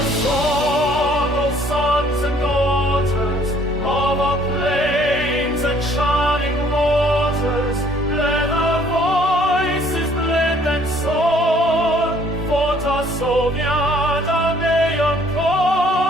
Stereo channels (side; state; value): both; normal; correlation 0.60